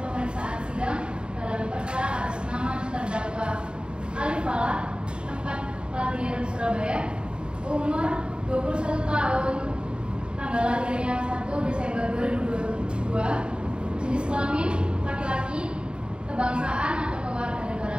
pemeriksaan sidang dalam perkara atas nama terdakwa Alif Falah, tempat lahir Surabaya, umur 21 tahun, tanggal lahirnya 1 Desember 2022, jenis kelamin laki-laki, kebangsaan atau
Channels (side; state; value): left; late; 0.052 ms